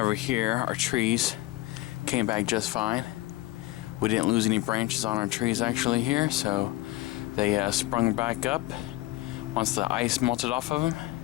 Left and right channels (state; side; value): quieter; right; 17.7 dB